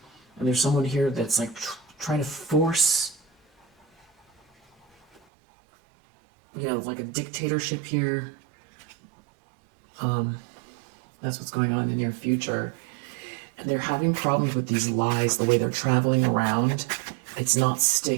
And there's someone here that's like trying to force, like a dictatorship here. That's what's going on in the near future. And they're having problems with these lies, the way they're traveling around. It's not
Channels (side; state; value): left; drops out; at 5.2 s